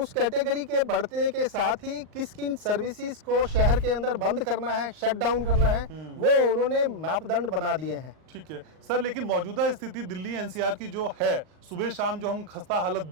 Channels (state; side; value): late; left; 38 ms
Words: कैटेगरी के बढ़ने के साथ ही किन सर्विसेज को शहर के अंदर बंद करना है, शट डाउन करना है, वो उन्होंने मापदंड बना दिए हैं। ठीक है सर, लेकिन मौजूदा स्थिति दिल्ली NCR की जो है, सुबह शाम जो हम खस्ता हालत